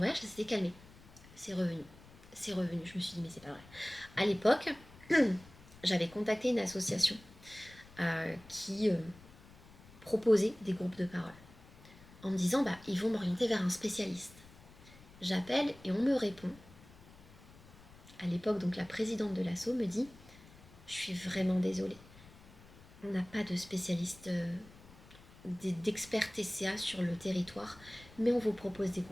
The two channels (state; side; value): noise; left; rumble, 21 dB below the sound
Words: ça s'était calmé. C'est revenu. C'est revenu. Je me suis dit, mais c'est pas vrai. À l'époque, j'avais contacté une association qui proposait des groupes de parole. En me disant, ils vont m'orienter vers un spécialiste. J'appelle et on me répond. À l'époque, donc la présidente de l'asso me dit « Je suis vraiment désolée. On n'a pas de spécialiste, d'expert TCA sur le territoire, mais on vous propose des